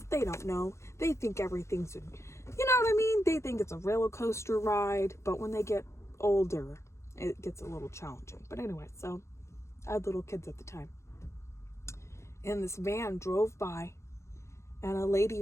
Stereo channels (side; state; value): right; late; 0.14 ms